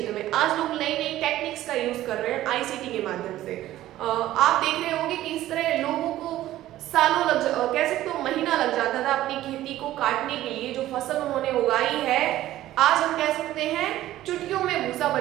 में आज लोग नई नई टेक्निक्स का यूज कर रहे हैं ICT के माध्यम से। आप देख रहे होंगे कि इस तरह लोगों को सालों कह सकते हो महीना लग जाता था अपनी खेती को काटने के लिए, जो फसल उन्होंने उगाई है आज हम कह सकते हैं चुटकियों में भूसा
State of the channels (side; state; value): left; quieter; 14.4 dB